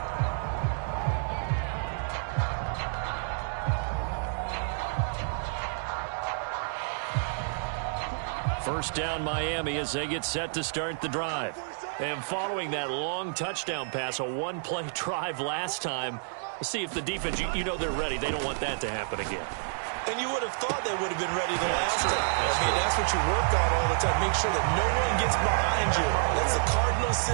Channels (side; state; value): left; silent; digital silence